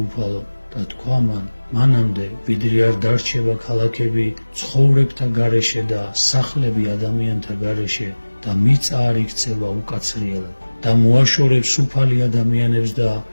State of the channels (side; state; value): both; inverted; correlation -1.00